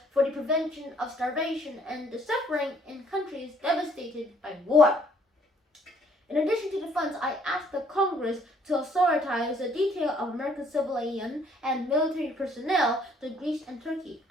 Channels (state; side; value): normal; both; correlation 0.63